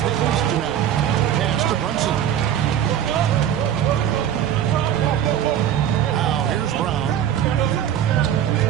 the East now. Pass to Brunson. Now here's Brown.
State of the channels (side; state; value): left; quieter; 10.1 dB